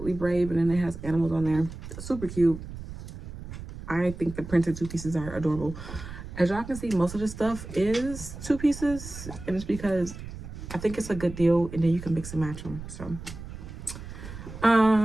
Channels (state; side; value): noise; right; rumble, 11 dB below the sound